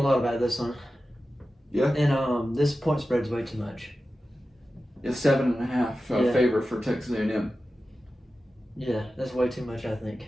about this one. Yeah. And this point spread's way too much. It's 7.5 favor for Texas A&M. Yeah, that's way too much, I think.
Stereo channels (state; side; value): normal; both; correlation 0.93